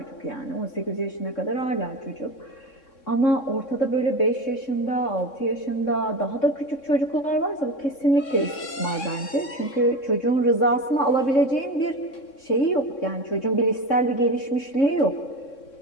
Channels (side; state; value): right; late; 3.6 ms